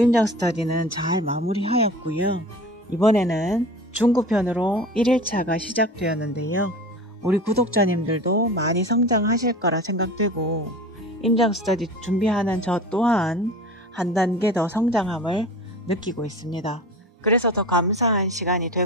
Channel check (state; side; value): normal; both; correlation 0.36